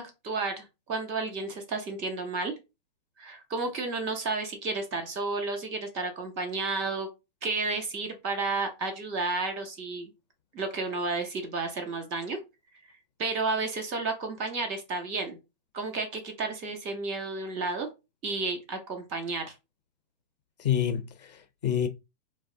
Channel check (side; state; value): left; late; 1.6 ms